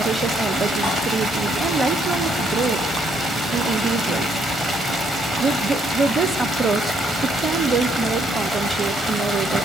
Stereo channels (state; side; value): normal; both; correlation 0.70